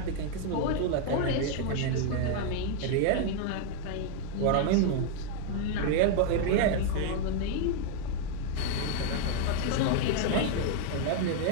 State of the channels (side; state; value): both; different; correlation 0.00